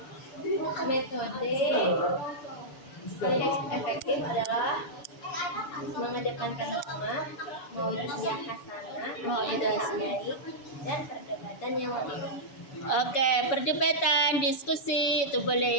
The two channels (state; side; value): late; right; 6.9 ms